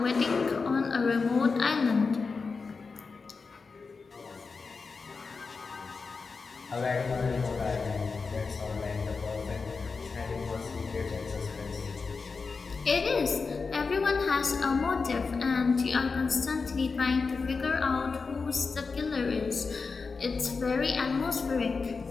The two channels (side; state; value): right; quieter; 4.6 dB